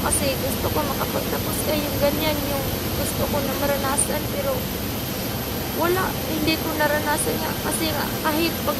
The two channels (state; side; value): identical; both; correlation 1.00